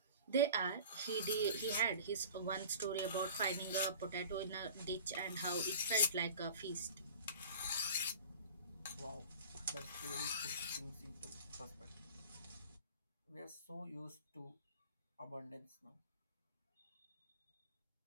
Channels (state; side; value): inverted; both; correlation -0.40